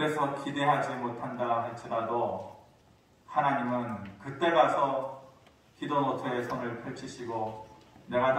기대하지 못한다 할지라도 하나님은 그때 가서 기도 노트에 손을 펼치시고 내가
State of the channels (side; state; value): both; identical; correlation 1.00